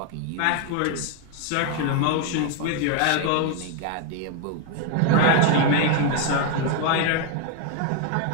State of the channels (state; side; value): different; both; correlation 0.01